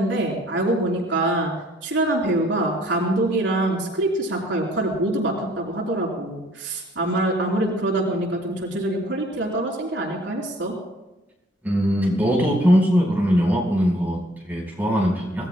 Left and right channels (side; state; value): both; normal; correlation 0.58